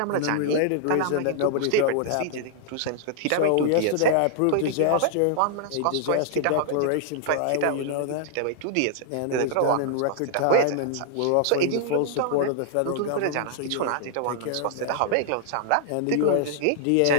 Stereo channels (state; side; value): different; both; correlation -0.01